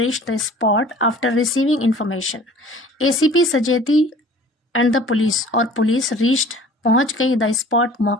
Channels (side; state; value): both; normal; correlation 0.47